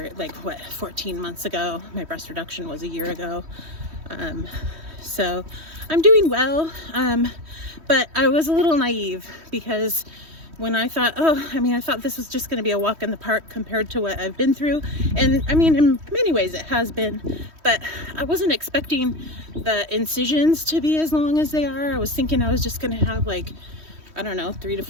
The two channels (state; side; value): late; left; 3.1 ms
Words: 14 months ago. My breast reduction was a year ago. So I'm doing well, but I was a little naive because when I thought, I thought this was just going to be a walk in the park compared to what I've been through. And I mean, in many ways it has been, but I wasn't expecting the incisions to be as long as they are. I was thinking I was just going to have 3 to